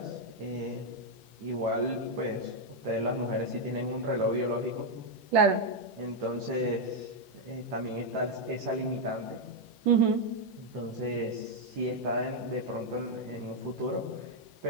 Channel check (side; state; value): left; late; 11 ms